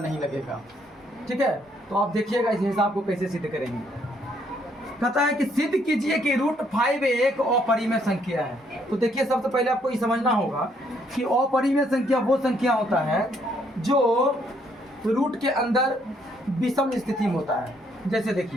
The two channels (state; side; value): normal; both; correlation 0.69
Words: लगेगा, ठीक है? तो आप देखिएगा इस हिसाब को कैसे सिद्ध करेंगे। कहता है कि सिद्ध कीजिए कि √5 एक अपरिमेय संख्या है। तो देखिए, सबसे पहले आपको ये समझना होगा कि अपरिमेय संख्या वो संख्या होता है जो रूट के अंदर विषम स्थिति में होता है। जैसे